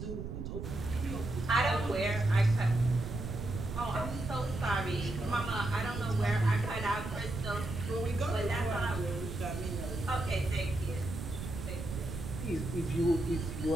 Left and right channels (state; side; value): noise; right; rumble, 7 dB below the sound